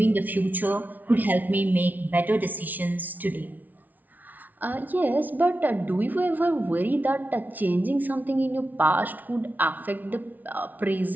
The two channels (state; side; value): late; left; 0.079 ms